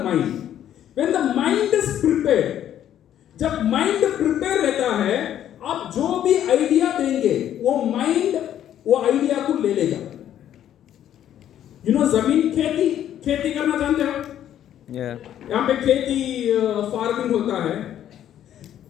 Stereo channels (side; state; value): right; quieter; 10.9 dB